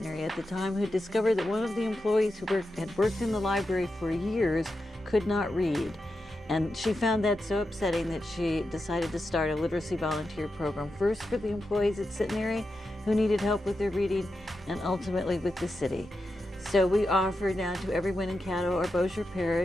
at the time, who discovered that one of the employees who had worked in the library for years could not read. And she found that so upsetting that she decided to start a literacy volunteer program, first for the employees at Centenary who needed help with their reading, and ultimately with the city. So we offer now to everyone in Caddo or Bossier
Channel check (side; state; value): both; normal; correlation 0.89